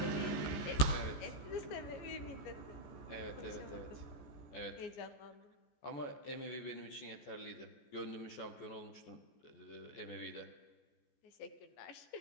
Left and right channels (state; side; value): late; right; 14 ms